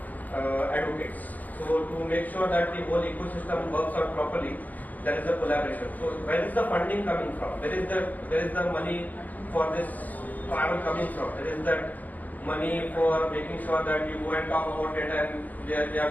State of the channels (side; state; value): right; late; 0.081 ms